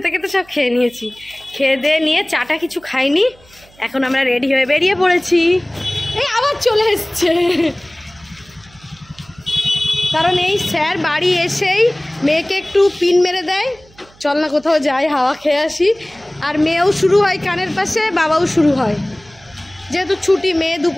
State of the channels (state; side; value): noise; right; hum, 27 dB below the sound